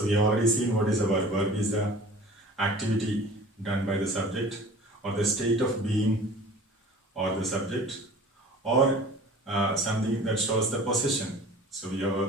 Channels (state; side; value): normal; both; correlation 0.43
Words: we have already seen what is a verb. Verb is the activity done by the subject, or the state of being or the subject, or something that shows the possession. So we